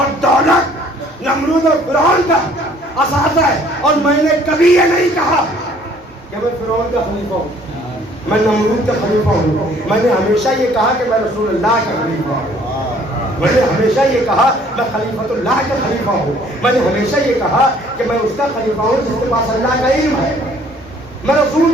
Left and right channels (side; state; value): both; normal; correlation 0.58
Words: دولت نمرود اور فرعون کا اثاثہ ہے اور میں نے کبھی یہ نہیں کہا کہ میں فرعون کا خلیفہ ہوں میں نمرود کا خلیفہ ہوں میں نے ہمیشہ یہ کہا کہ میں رسول اللہ کا خلیفہ ہوں میں نے ہمیشہ یہ کہا میں خلیفۃ اللہ کا خلیفہ ہوں میں نے ہمیشہ یہ کہا کہ میں اس کا خلیفہ ہوں جس کے پاس اللہ کا علم ہے میں